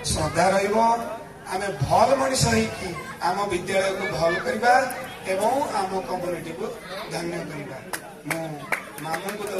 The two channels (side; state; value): both; identical; correlation 1.00